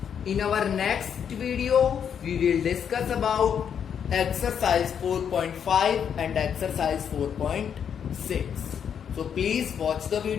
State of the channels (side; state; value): right; quieter; 7.9 dB